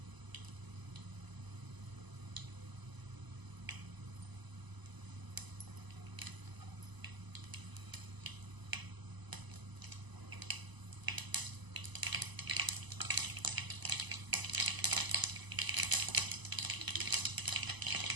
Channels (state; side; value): late; left; 1.0 ms